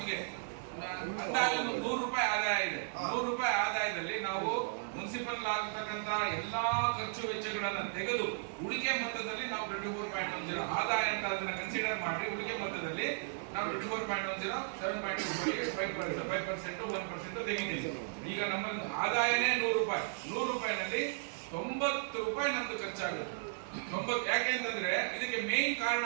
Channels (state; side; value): silent; left; digital silence